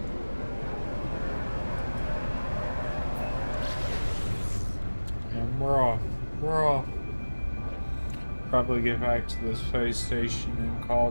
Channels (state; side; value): inverted; both; correlation -1.00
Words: And we're off. We're off. Probably get back to the space station and call